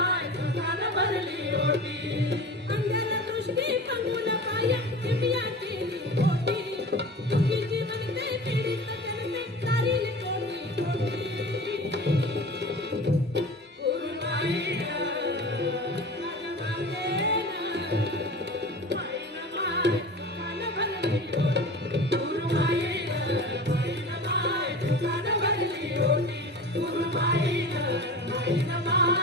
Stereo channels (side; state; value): both; normal; correlation 0.35